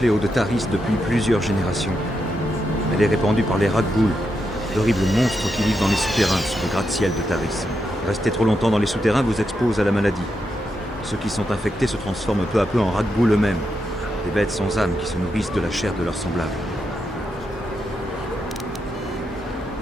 de Taris depuis plusieurs générations. Elle est répandue par les Rakghoul, d'horribles monstres qui vivent dans les souterrains sous le gratte-ciel de Taris. Rester trop longtemps dans les souterrains vous expose à la maladie. Ceux qui sont infectés se transforment peu à peu en Rakghoul eux-mêmes, des bêtes sans âme qui se nourrissent de la chair de leurs semblables.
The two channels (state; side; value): normal; both; correlation 0.84